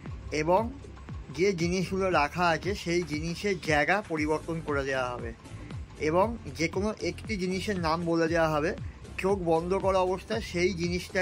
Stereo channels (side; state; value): both; identical; correlation 1.00